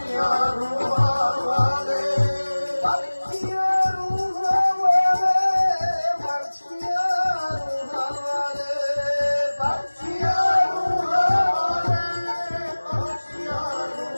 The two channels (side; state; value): both; inverted; correlation -1.00